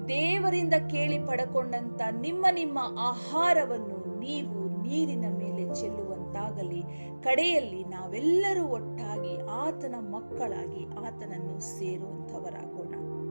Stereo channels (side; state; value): both; inverted; correlation -1.00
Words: ದೇವರಿಂದ ಕೇಳಿ ಪಡಕೊಂಡಂತ ನಿಮ್ಮ ಆಹಾರವನ್ನು ನೀವು ನೀರಿನ ಮೇಲೆ ಚೆಲ್ಲುವಂತಾಗಲಿ. ಕಡೆಯಲ್ಲಿ ನಾವೆಲ್ಲರೂ ಒಟ್ಟಾಗಿ ಆತನ ಮಕ್ಕಳಾಗಿ ಆತನನ್ನು ಸೇರುವಂತವರಾಗೋಣ.